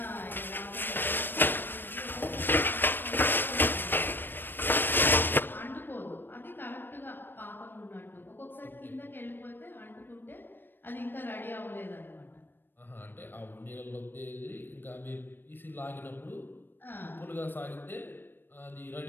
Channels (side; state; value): right; late; 0.095 ms